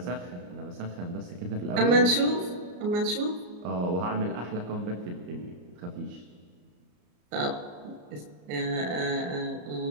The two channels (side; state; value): left; late; 34 ms